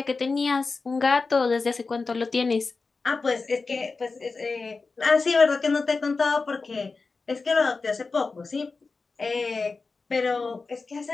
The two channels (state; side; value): quieter; right; 4.2 dB